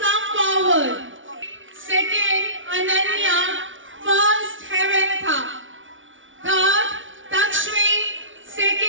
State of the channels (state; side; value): late; left; 0.56 ms